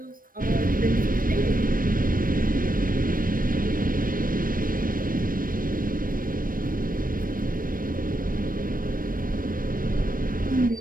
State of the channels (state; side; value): late; left; 0.41 ms